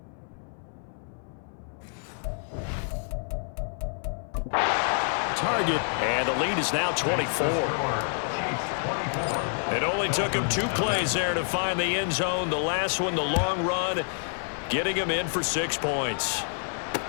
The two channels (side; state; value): right; silent; 59 dB below the other